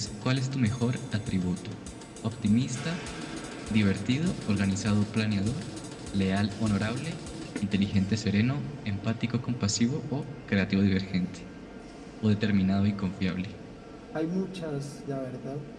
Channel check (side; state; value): both; identical; correlation 1.00